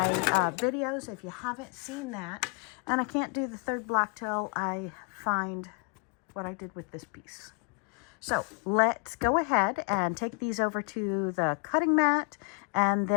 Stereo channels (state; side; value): quieter; right; 37.1 dB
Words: videos if you haven't seen that. And I can't do the 3rd block till I find what I did with this piece. So let's go ahead and take these over to the cutting mat and